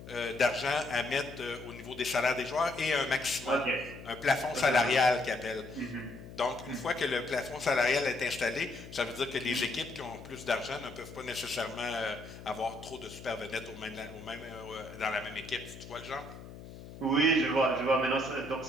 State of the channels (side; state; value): left; noise; hum, 14 dB below the sound